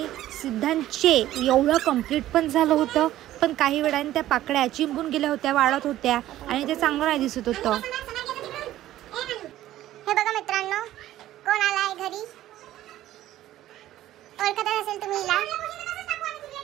सिद्धांचे एवढं कंप्लीट पण झालं होतं, पण काही वेळाने त्या पाकळ्या चिंबून गेल्या होत्या, वाळत होत्या आणि ते चांगलं नाही दिसत होतं. हे बघा मित्रांनो, कोण आलाय घरी, ओळखत असेल तुम्ही हिला,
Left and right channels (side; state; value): left; quieter; 13.9 dB